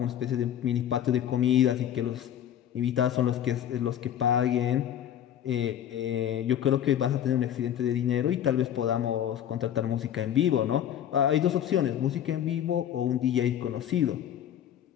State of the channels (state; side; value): quieter; right; 10.4 dB